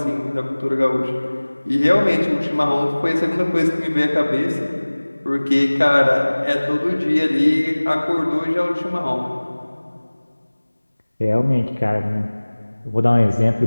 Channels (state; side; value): inverted; both; correlation -1.00